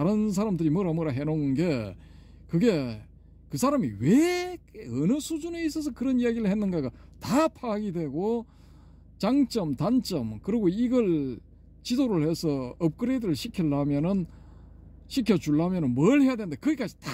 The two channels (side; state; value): both; identical; correlation 1.00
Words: 사람들이 뭐라 해놓은 게 그게 그 사람이 왜 어느 수준에 있어서 그런 이야기를 했는가가 다 파악이 되고 장점, 단점, 그리고 이걸 지도를 해서 업그레이드를 시켜주려면은 뭘 해야 되는데 거기까지